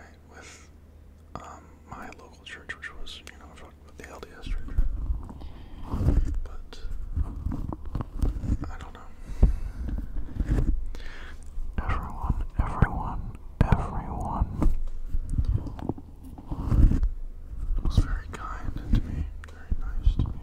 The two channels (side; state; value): both; identical; correlation 1.00